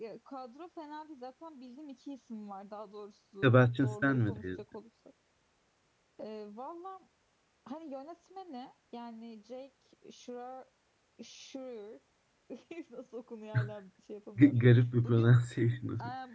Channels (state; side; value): identical; both; correlation 1.00